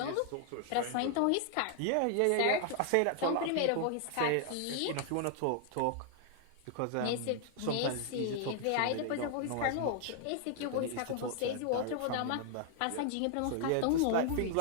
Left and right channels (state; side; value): different; both; correlation 0.00